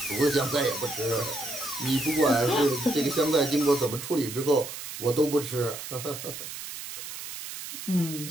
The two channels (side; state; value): right; noise; hiss, 9 dB below the sound